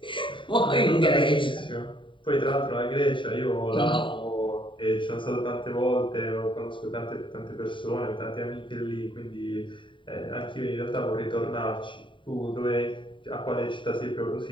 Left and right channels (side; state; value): right; late; 0.24 ms